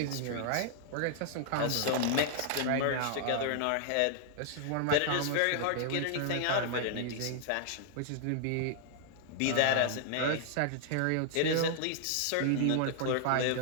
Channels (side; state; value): both; different; correlation -0.01